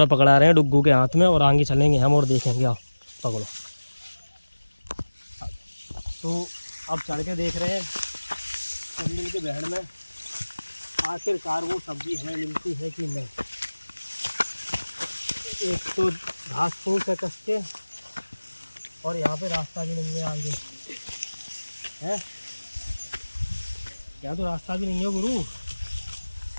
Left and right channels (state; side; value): inverted; both; correlation -1.00